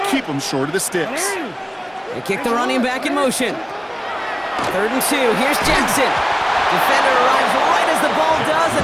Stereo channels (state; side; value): identical; both; correlation 1.00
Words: keep him short of the sticks. They kick the running back in motion. 3rd and 2. Here's Jackson. Defender arrives right as the ball does,